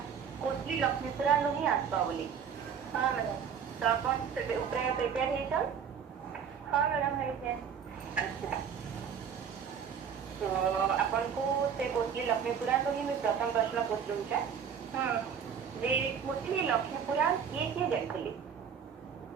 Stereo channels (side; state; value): left; quieter; 7.4 dB